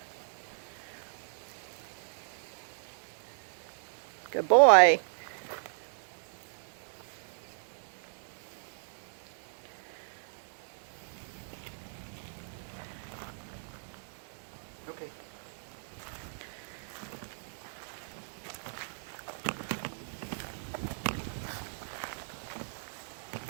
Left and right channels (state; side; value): silent; left; digital silence